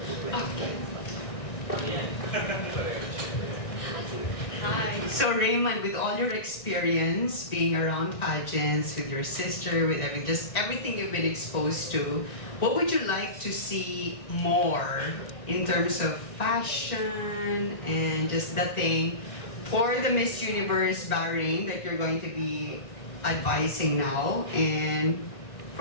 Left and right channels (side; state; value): right; late; 1.7 ms